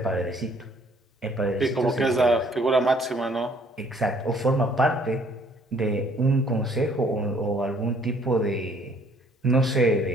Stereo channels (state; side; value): normal; both; correlation 0.61